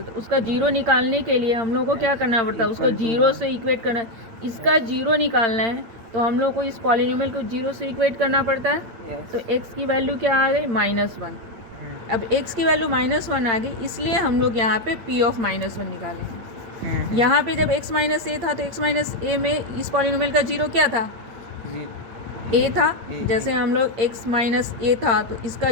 हैं। तो उसका जीरो निकालने के लिए हम लोग को क्या करना पड़ता है? उसको जीरो से इक्वेट करना है। इसका जीरो निकालना है तो हम लोग को इस पॉलिनोमियल को जीरो से इक्वेट करना पड़ता है। तो x की वैल्यू क्या आ गई? -1। अब x की वैल्यू -1 आ गई, इसलिए हम लोग यहाँ पे p ऑफ -1 निकालेंगे। यहाँ पे जब x माइनस ए था तो x माइनस ए में इस पॉलिनोमियल का जीरो क्या था? a था। जैसे हम लोग x माइनस ए था तो इसका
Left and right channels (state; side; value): late; left; 8.7 ms